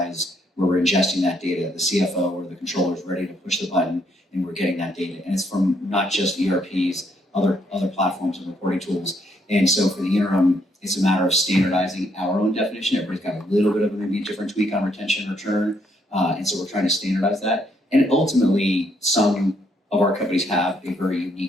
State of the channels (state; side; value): normal; both; correlation 0.72